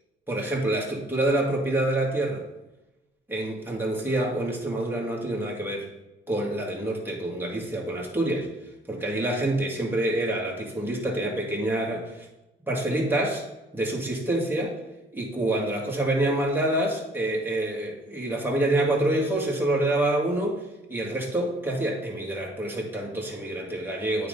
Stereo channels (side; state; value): both; normal; correlation 0.59